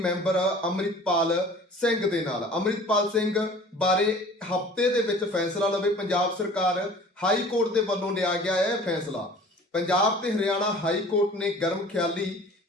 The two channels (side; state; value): both; normal; correlation 0.46